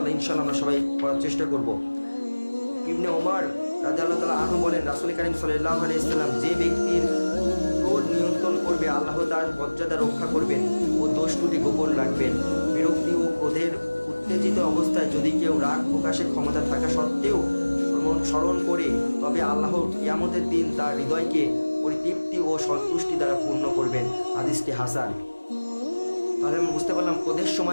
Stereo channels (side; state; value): both; inverted; correlation -1.00